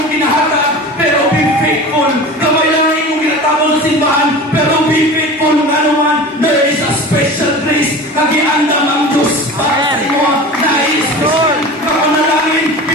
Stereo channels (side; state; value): both; normal; correlation 0.35